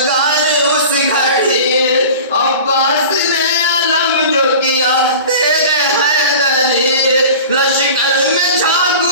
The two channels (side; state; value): both; inverted; correlation -0.37